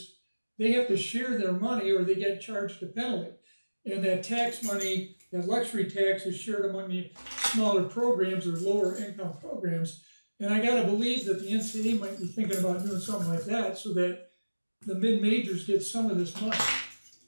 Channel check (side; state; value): both; inverted; correlation -1.00